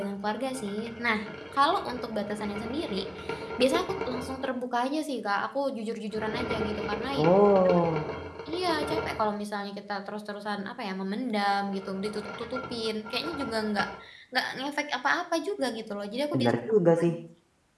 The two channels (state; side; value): identical; both; correlation 1.00